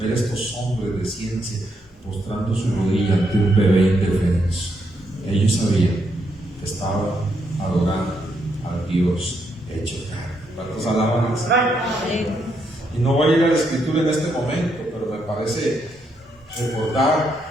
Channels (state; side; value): normal; both; correlation 0.78